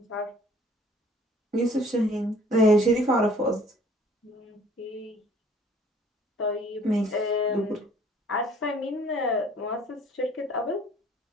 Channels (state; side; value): normal; both; correlation 0.55